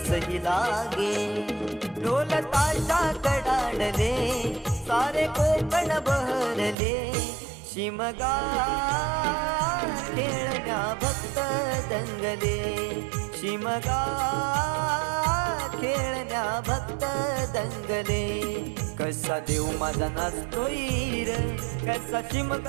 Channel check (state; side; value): drops out; left; at 6.8 s